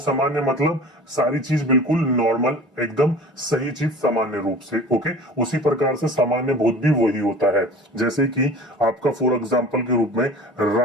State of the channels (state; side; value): normal; both; correlation 0.40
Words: मतलब सारी चीज बिल्कुल नॉर्मल, एकदम सही चीज सामान्य रूप से। ओके, उसी प्रकार से सामान्य भूत भी वही होता है। जैसे कि आपका फॉर एग्जांपल के रूप में